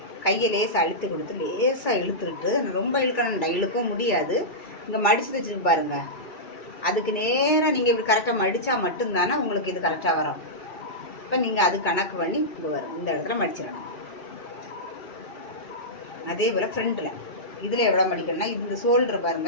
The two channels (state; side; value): late; right; 2.4 ms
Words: கையை லேசாக அழுத்தி கொடுத்து லேசாக இழுத்துட்டு, ரொம்ப இழுக்கணும், இழுக்கவும் முடியாது. இங்கே மடித்து தைச்சிருக்கு பாருங்கள், அதுக்கு நேராக நீங்கள் இப்படி கரெக்டாக மடித்தா மட்டும்தானே உங்களுக்கு இது கரெக்டாக வரும். இப்போ நீங்கள் அது கணக்கு பண்ணி இங்கே வரும், இந்த இடத்துல மடிச்சிடணும். அதே போல் ஃப்ரண்ட்டில் இதில் எவ்வளோ மடிக்கணும்னா, இந்த ஷோல்டர்